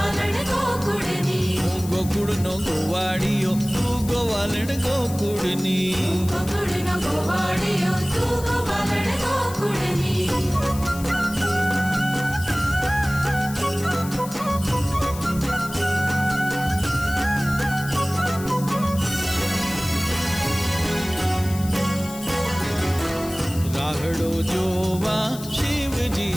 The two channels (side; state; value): left; noise; hiss, 14 dB below the sound